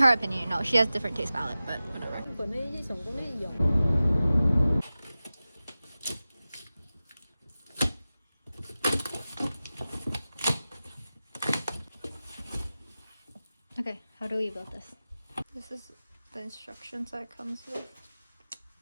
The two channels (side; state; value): both; inverted; correlation -0.96